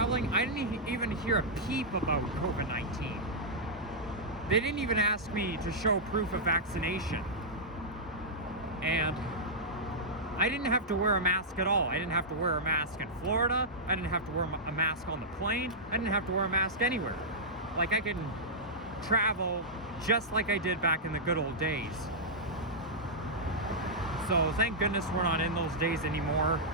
I didn't even hear a peep about COVID-19. They didn't even ask me to show proof of vaccination. And I didn't have to wear a mask at all. I didn't have to wear a mask in Florida. I didn't have to wear a mask on the plane. I didn't have to wear a mask anywhere. Like, I can travel just like I did back in the good old days. So thank goodness we're not in those days anymore.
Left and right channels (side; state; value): both; normal; correlation -0.10